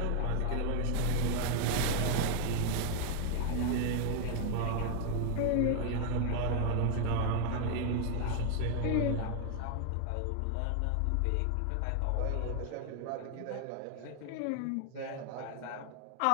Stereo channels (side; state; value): both; different; correlation 0.00